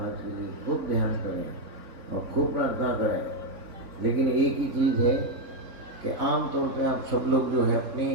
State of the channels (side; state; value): left; late; 3.8 ms